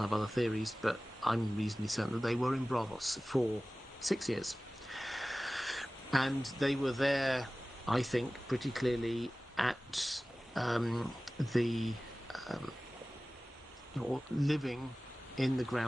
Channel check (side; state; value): both; normal; correlation 0.97